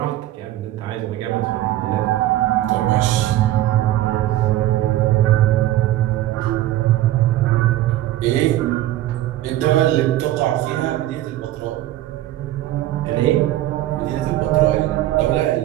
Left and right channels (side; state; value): left; quieter; 14.3 dB